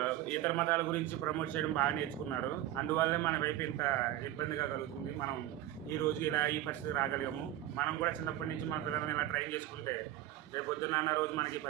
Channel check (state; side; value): quieter; left; 13.6 dB